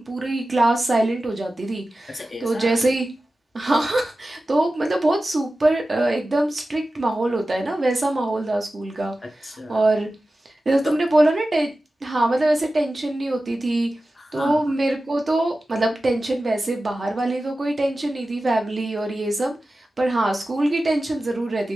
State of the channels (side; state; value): both; normal; correlation 0.95